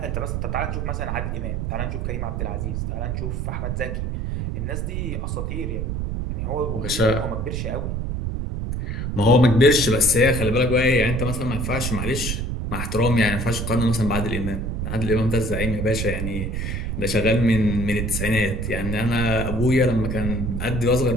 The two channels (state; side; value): noise; right; rumble, 2 dB below the sound